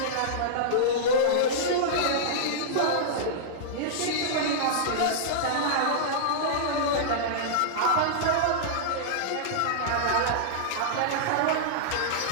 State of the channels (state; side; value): different; both; correlation -0.02